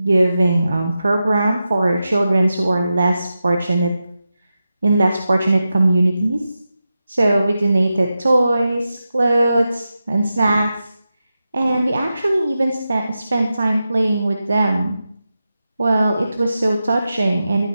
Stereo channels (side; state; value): both; inverted; correlation -0.91